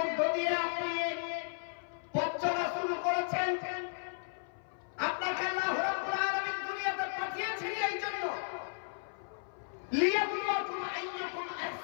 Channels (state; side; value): silent; right; 55 dB below the other